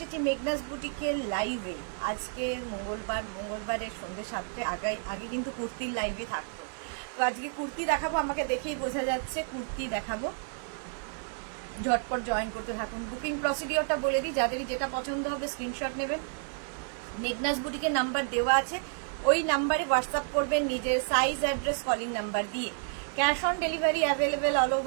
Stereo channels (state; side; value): silent; left; 57 dB below the other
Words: মেঘনাস বুটিকের লাইভে। আজকে মঙ্গলবারের সন্ধ্যে 7টে আগে কিন্তু কুর্তির লাইভে থাকতো। তো আজকে কুর্তি দেখাবো, আমাকে দেখেই বোঝা যাচ্ছে কুর্তি দেখাবো। ঝটপট জয়েন করতে থাকুন। বুকিং প্রসিডিওরটা বলে দিই, যাদেরই যেটা পছন্দ হবে স্ক্রিনশট নেবেন। মেঘনাস বুটিকের নাম্বার দেওয়া আছে, ওই নাম্বারে হোয়াটসঅ্যাপ করবেন নিজের সাইজ, অ্যাড্রেস, কলিং নাম্বার দিয়ে। Cash on delivery available all